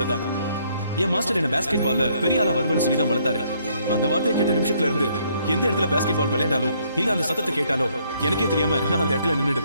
தான். என் மாஸ்டர் என்ன பாஸ்கெட் பால்ல பெரிய ஆளா வருவேன்னு சொல்லி தான் வளர்த்தாரு. அந்த வார்த்தையை கேட்ட நிமிஷத்துல இருந்து எந்த இடத்துல பாஸ்கெட் பால் விளையாண்டாலும் இல்ல அந்த சத்தத்தை கேட்டாலோ எனக்கே தெரியாம நான் அந்த இடத்துல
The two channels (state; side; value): inverted; both; correlation -0.68